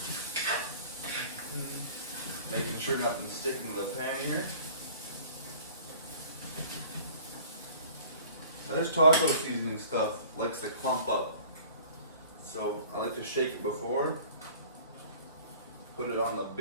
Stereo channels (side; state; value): both; inverted; correlation -0.47